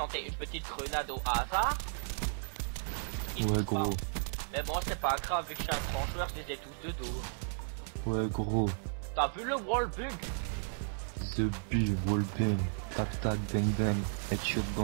une petite grenade au hasard. Ouais, gros. Pas. Mais bon, c'est pas grave, vu que je suis un grand joueur, je les ai tous de dos. Ouais, gros. T'as vu le wallbug? The Bu, wallbang. Tac tac, bang bang. Headshot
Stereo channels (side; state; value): left; silent; 55 dB below the other